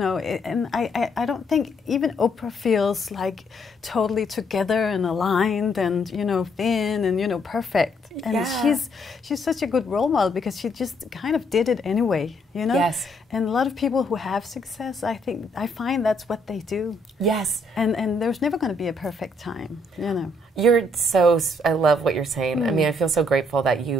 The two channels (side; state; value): both; normal; correlation 0.70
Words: and I don't think even Oprah feels like totally together and aligned and, you know, thin and, you know, perfect. And she's such a good role model because she just kind of did it anyway, you know? Yes. And a lot of people who have success, I find that's what they do. Yes. And there's never going to be a perfect time, you know? I love what you're saying. I mean, I feel so grateful that